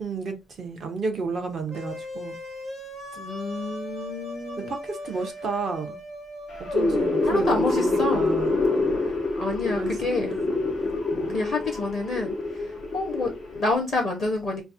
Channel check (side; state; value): both; normal; correlation 0.77